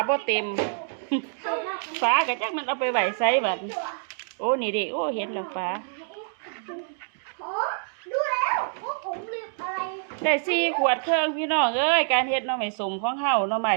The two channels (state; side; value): silent; left; digital silence